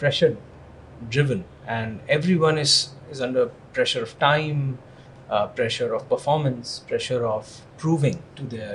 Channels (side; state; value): both; identical; correlation 1.00